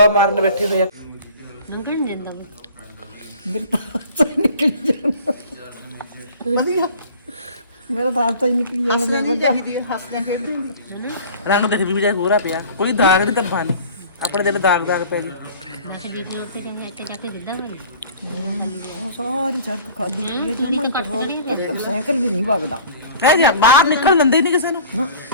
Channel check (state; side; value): inverted; both; correlation -0.45